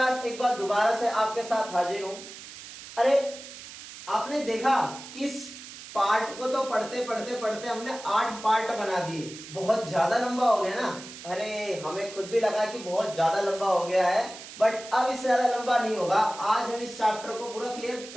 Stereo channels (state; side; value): noise; right; hiss, 14 dB below the sound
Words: एक बार दोबारा से आपके साथ हाजिर हूं। अरे आपने देखा कि इस पार्ट को तो पढ़ते पढ़ते पढ़ते हमने 8 पार्ट बना दिए। बहुत ज्यादा लंबा हो गया ना। अरे हमें खुद भी लगा कि बहुत ज्यादा लंबा हो गया है, बट अब इससे ज्यादा लंबा नहीं होगा। आज हम इस चैप्टर को पूरा क्लियर